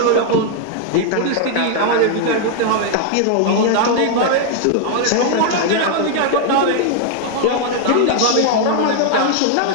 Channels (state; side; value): different; both; correlation 0.00